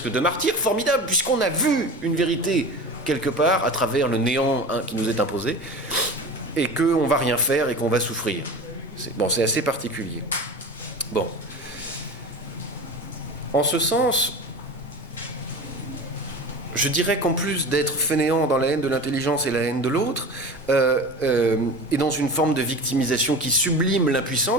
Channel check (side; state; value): both; normal; correlation 0.32